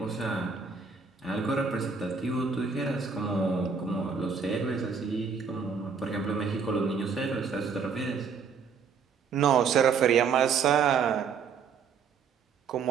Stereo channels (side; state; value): left; quieter; 5.9 dB